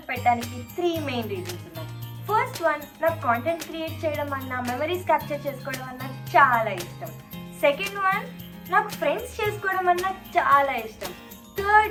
పెట్టడానికి 3 మెయిన్ రీజన్స్ ఉన్నాయి. ఫస్ట్ వన్, నాకు కాంటెంట్ క్రియేట్ చేయడం అన్నా, మెమరీస్ క్యాప్చర్ చేసుకోవడం అన్నా చాలా ఇష్టం. సెకండ్ వన్, నాకు ఫ్రెండ్స్ చేసుకోవడం అన్నా చాలా ఇష్టం.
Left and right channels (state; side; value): identical; both; correlation 1.00